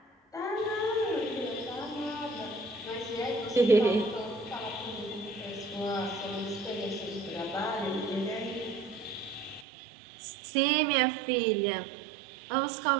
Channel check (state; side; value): drops out; left; at 9.7 s